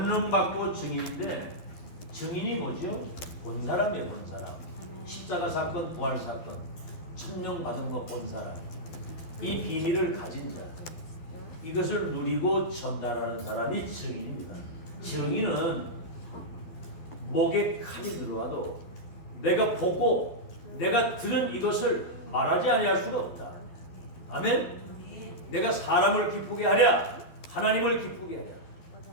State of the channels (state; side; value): late; right; 12 ms